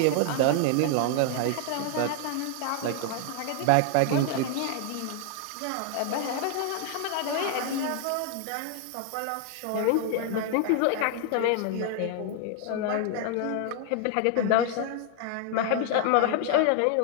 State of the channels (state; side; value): different; both; correlation 0.00